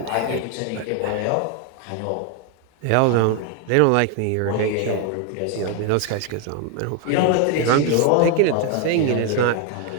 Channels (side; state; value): both; different; correlation 0.01